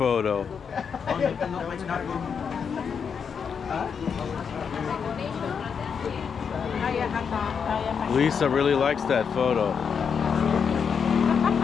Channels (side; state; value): right; quieter; 6.6 dB